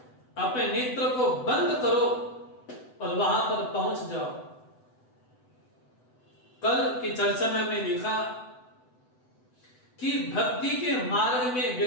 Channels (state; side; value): late; right; 7.9 ms